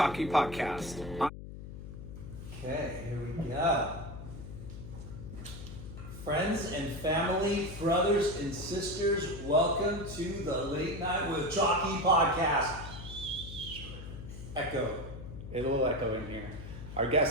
podcast. Okay, here we go. Friends and family, brothers and sisters, welcome to the Late Night with Chalky podcast. Echo. A little echo in here. Our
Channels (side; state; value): left; noise; hum, 11 dB below the sound